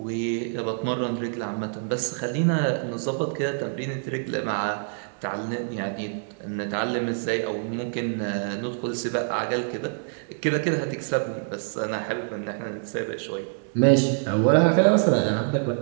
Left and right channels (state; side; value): silent; left; digital silence